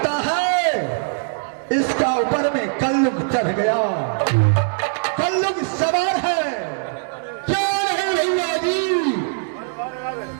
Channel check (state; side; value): silent; left; digital silence